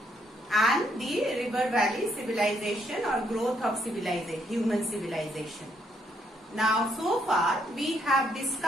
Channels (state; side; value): normal; both; correlation 0.73